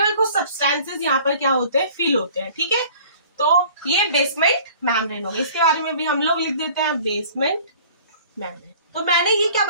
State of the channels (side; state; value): both; inverted; correlation -0.50